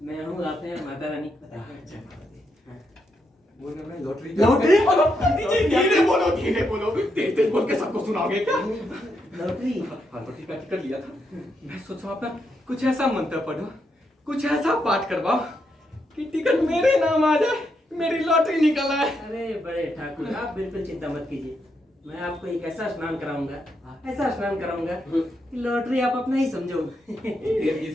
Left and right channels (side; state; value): both; normal; correlation 0.81